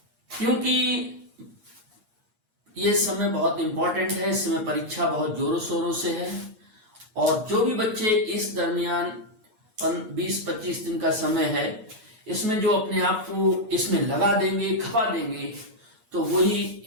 क्योंकि ये समय बहुत इंपॉर्टेंट है, इस समय परीक्षा बहुत जोरों शोरों से है और जो भी बच्चे इस दरमियान 20-25 दिन का समय है, इसमें जो अपने आप को इसमें लगा देंगे, खपा देंगे, तो वही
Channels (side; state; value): left; late; 8.4 ms